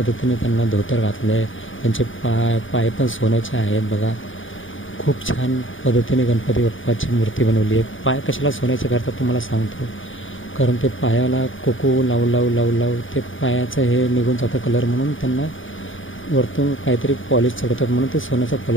त्यांना धोतर घातलं आहे. त्यांचे पाय पण सोन्याचे आहेत. बघा खूप छान पद्धतीने गणपती बाप्पाची मूर्ती बनवली आहे. पाय कशाला सोन्याचे करतात तुम्हाला सांगतो. कारण ते पायाला कोको लावू ते पायाचं हे निघून जातं कलर, म्हणून त्यांना वरतून काहीतरी पॉलिश चढवतात, म्हणून ते सोन्याचा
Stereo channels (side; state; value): right; late; 0.57 ms